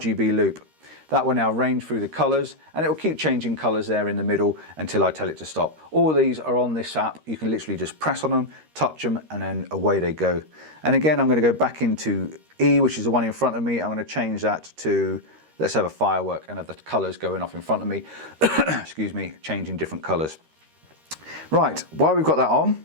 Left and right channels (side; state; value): left; late; 13 ms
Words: Loop. That will now range through the colors, and it will keep changing colors there in the middle until I tell it to stop. All these are on this app. You can literally just press on them, touch them, and then away they go. And again, I'm going to go back into E, which is the one in front of me. I'm going to change that to, let's have a firework and have the colors going off in front of me. Excuse me, changing different colors. Right, while we've got that on,